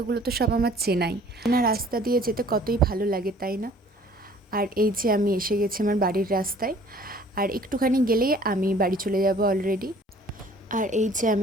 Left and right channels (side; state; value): both; normal; correlation 0.53